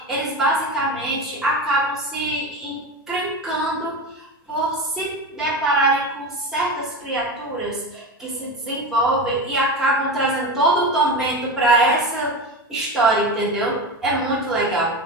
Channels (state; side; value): normal; both; correlation 0.23